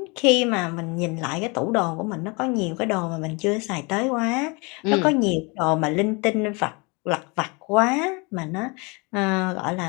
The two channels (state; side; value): quieter; right; 29.0 dB